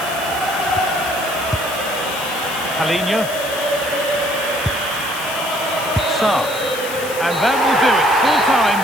Palinha. Sarr. And that will do it. Full time,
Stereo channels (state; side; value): noise; left; hiss, 11 dB below the sound